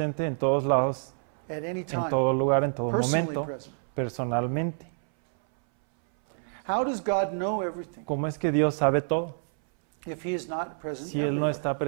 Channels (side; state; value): left; silent; 60 dB below the other